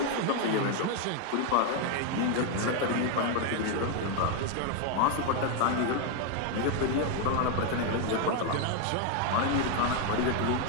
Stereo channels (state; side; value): different; both; correlation 0.01